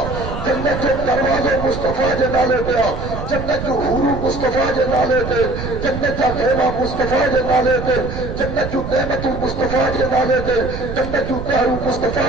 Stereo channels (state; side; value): noise; right; rumble, 7 dB below the sound